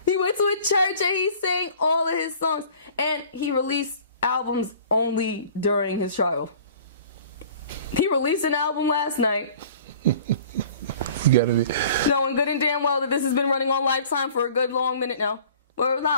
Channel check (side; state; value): both; inverted; correlation -0.47